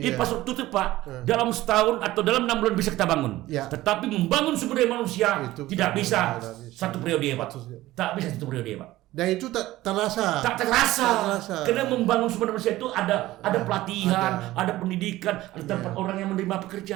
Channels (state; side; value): quieter; left; 16.6 dB